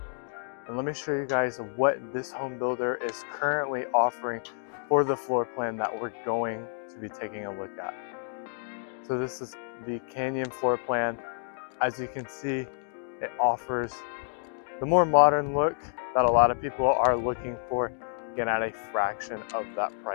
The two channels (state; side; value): silent; right; digital silence